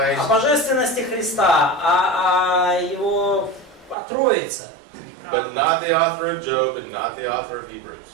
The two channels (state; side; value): drops out; left; at 4.0 s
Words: о божественности Христа, о Его о Троице. But not the author of Job and not the author of Hebrews.